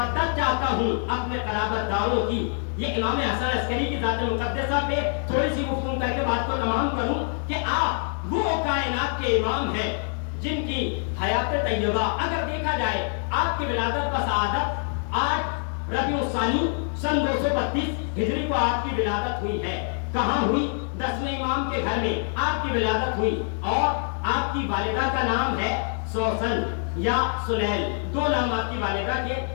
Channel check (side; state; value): right; silent; 60 dB below the other